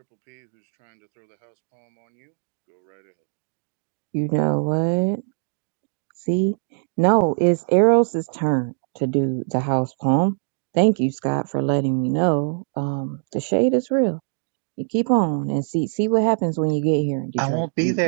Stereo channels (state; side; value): silent; left; 61 dB below the other